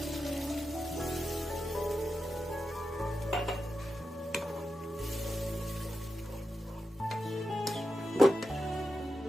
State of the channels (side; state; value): both; normal; correlation 0.89